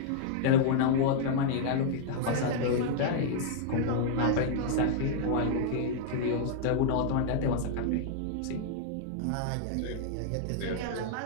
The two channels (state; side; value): different; both; correlation -0.01